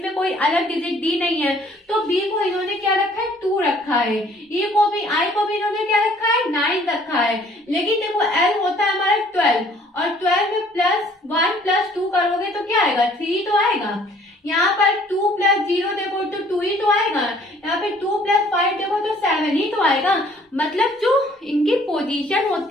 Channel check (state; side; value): normal; both; correlation 0.58